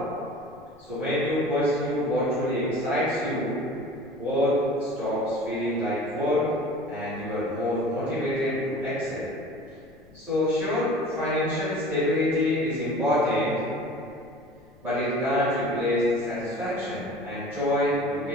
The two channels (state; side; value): noise; left; rumble, 28 dB below the sound